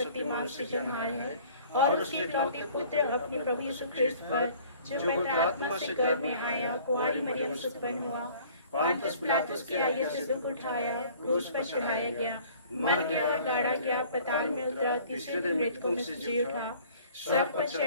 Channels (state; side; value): inverted; both; correlation -0.52